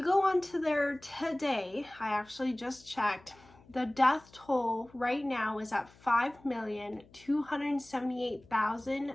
go onto there today, I actually just checked, the death toll right now is at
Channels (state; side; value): noise; left; hum, 26 dB below the sound